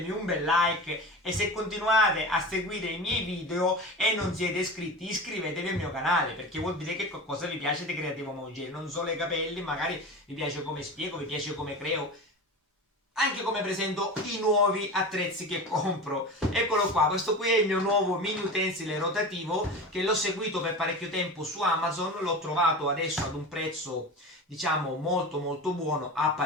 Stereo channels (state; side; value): normal; both; correlation 0.30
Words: un bel like e se continuate a seguire i miei video e non siete iscritti, iscrivetevi al mio canale perché vuol dire che qualcosa vi piace di Creativo Mongere, non solo i capelli, magari vi piace come spiego, vi piace come creo, anche come presento i nuovi attrezzi che compro. Eccolo qua, questo qui è il mio nuovo mini utensile rotativo che l'ho seguito per parecchio tempo su Amazon, l'ho trovato adesso ad un prezzo diciamo molto molto buono a